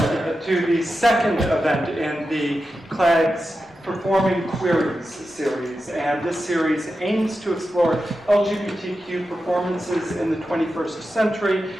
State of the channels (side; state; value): both; normal; correlation 0.91